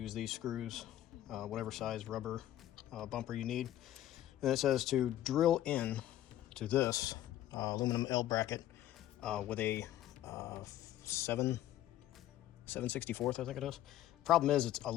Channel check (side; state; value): right; quieter; 13.1 dB